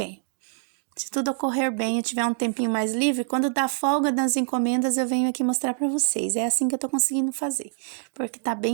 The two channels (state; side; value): silent; left; digital silence